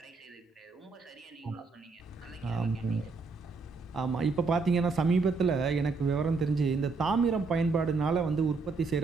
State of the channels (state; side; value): quieter; left; 4.2 dB